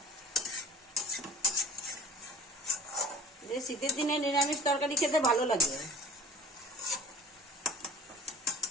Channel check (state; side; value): normal; both; correlation 0.45